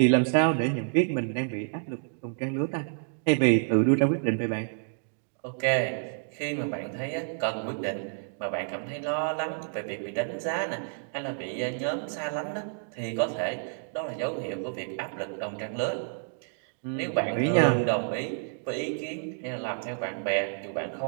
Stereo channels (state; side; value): silent; left; digital silence